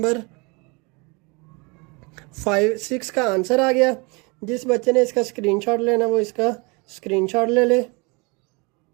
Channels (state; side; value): quieter; left; 28.9 dB